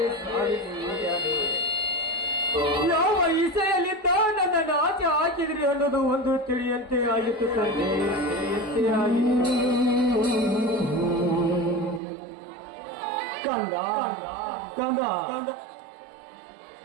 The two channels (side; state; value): left; drops out; at 12.0 s